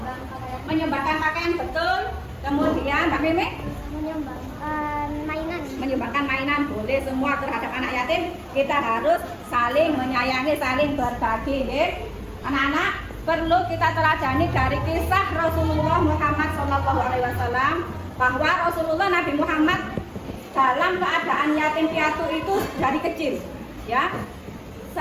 Menyumbangkan pakaian, betul. Kemudian Mbak Mimi? Menyumbangkan mainan. Menyumbangkan mainan boleh semua terhadap anak yatim. Kita harus saling menyayangi, saling berbagi. Anak-anak, perlu kita teladani dari kisah Rasulullah Muhammad SAW bahwa Rasulullah Nabi Muhammad dalam keadaan yatim piatu itu dari kecil, ya,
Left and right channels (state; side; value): identical; both; correlation 1.00